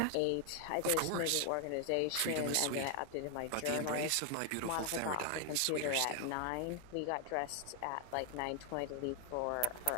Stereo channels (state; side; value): different; both; correlation 0.00